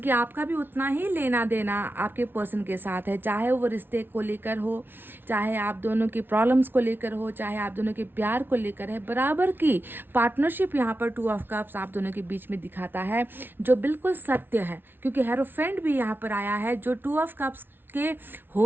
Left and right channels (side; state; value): left; late; 0.10 ms